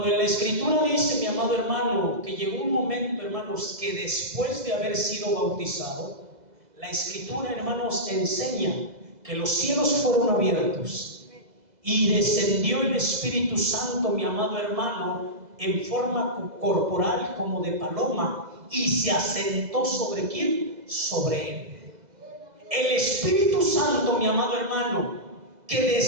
en la Escritura dice, mi amado hermano, que llegó un momento, hermanos, que después de haber sido bautizado, la Escritura, hermanos, enseña que los cielos fueron abiertos y descendió el Espíritu Santo, mi amado hermano, en forma corporal como de paloma, y se asentó ¿sobre quién? Sobre Él. El Espíritu Santo, mi amado hermano, que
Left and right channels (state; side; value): late; left; 2.0 ms